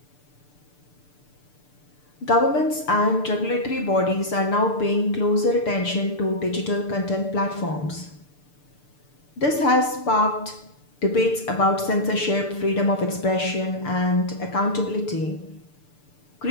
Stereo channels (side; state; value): right; late; 6.8 ms